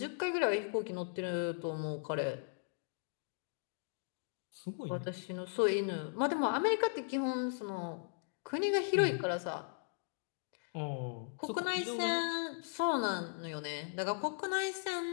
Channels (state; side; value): silent; right; digital silence